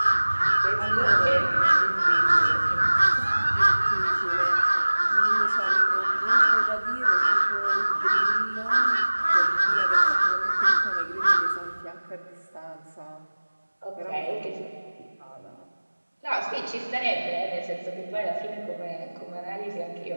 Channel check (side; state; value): both; inverted; correlation -1.00